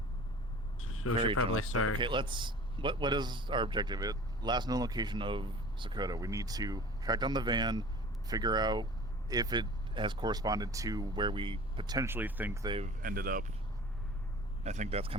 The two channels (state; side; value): normal; both; correlation 0.42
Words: So we Very should probably generous. start. Okay, let's... What is our objective? Last known location of Sokoto. We need to track down the van, figure out if it has corresponded to where we potentially think they've ended up. I think that's